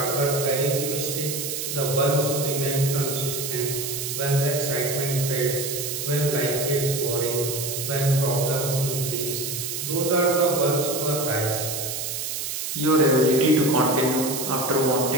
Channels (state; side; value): noise; right; hiss, 4 dB below the sound